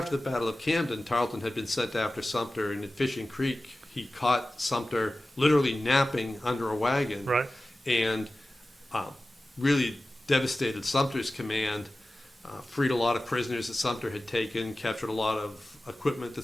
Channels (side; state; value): both; normal; correlation 0.96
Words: the Battle of Camden, Tarleton had been sent after Sumter, and at Fishing Creek, he caught Sumter literally napping under a wagon, Right. and really devastated Sumter's command, freed a lot of prisoners that Sumter had taken, captured a lot of equipment that